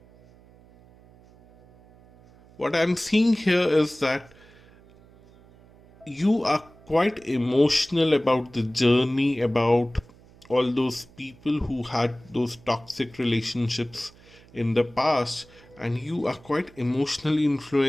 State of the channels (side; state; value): right; noise; hum, 26 dB below the sound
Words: What I'm seeing here is that you are quite emotional about the journey, about all those people who had those toxic relationships in the past, and you are quite emotionally